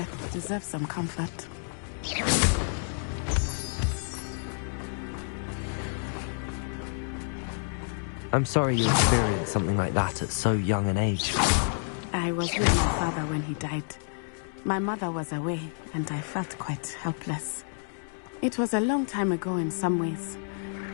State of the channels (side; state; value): right; silent; digital silence